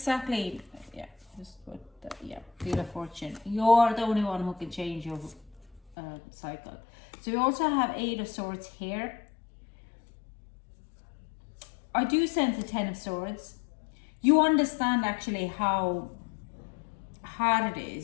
Wheel of Fortune. You're the only one who can change your cycle. So we also have Eight of Swords here. I do sense the Ten of Swords. You understand actually how hard it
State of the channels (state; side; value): drops out; right; at 6.0 s